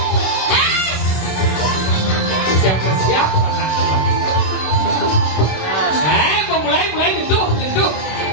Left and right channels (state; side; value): late; right; 26 ms